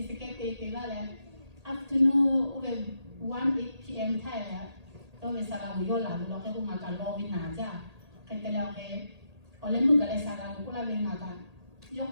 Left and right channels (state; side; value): late; left; 1.8 ms